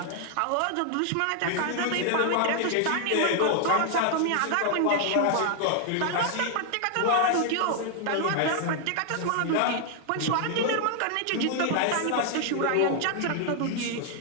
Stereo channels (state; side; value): different; both; correlation 0.00